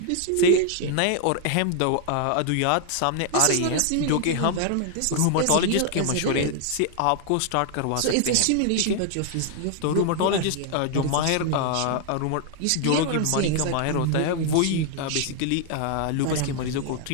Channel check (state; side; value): different; both; correlation 0.00